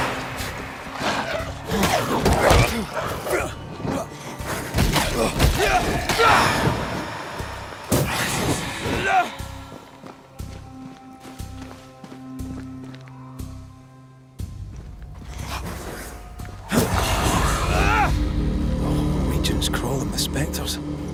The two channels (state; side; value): identical; both; correlation 1.00